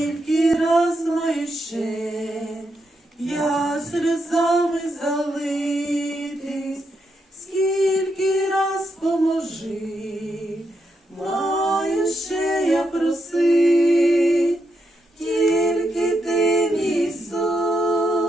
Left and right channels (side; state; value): both; normal; correlation 0.82